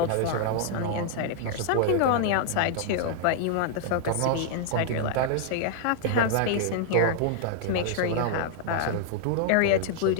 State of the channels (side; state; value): both; different; correlation -0.01